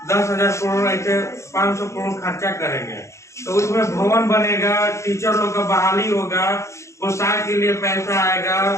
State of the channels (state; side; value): late; right; 0.14 ms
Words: 10,000 करोड़ ऐसे 500 करोड़ खर्चा करेंगे, तो उसमें भवन बनेगा, टीचर लोग का बहाली होगा, पोशाक के लिए पैसा आएगा,